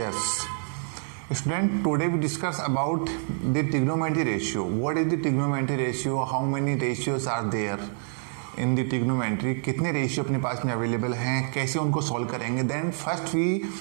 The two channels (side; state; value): left; silent; 59 dB below the other